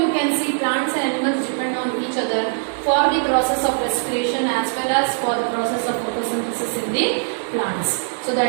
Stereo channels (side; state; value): left; silent; 56 dB below the other